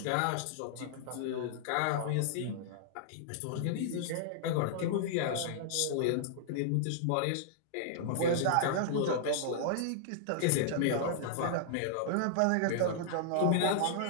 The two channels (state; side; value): different; both; correlation -0.01